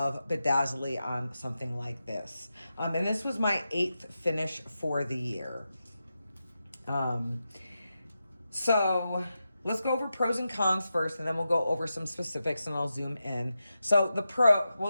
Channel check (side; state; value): both; inverted; correlation -0.90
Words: bedazzly on something like this. And this was my 8th finish for the year. So let's go over pros and cons first, and then we'll go over some specifics, and I'll zoom in. So